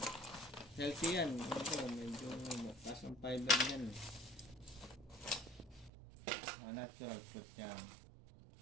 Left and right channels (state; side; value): drops out; left; at 5.9 s